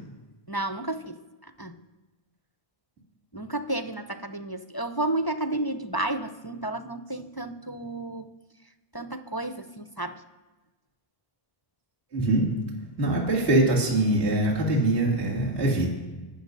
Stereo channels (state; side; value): late; right; 1.0 ms